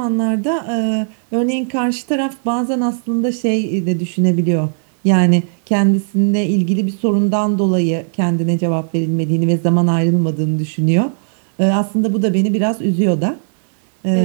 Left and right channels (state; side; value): silent; left; 60 dB below the other